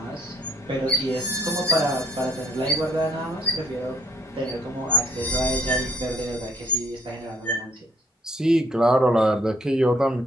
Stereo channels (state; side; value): normal; both; correlation 0.65